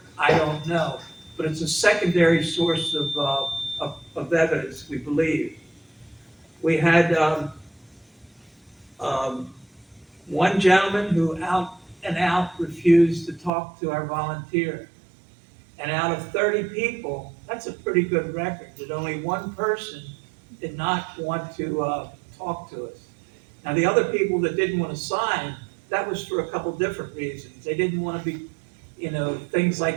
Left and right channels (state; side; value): drops out; left; at 13.5 s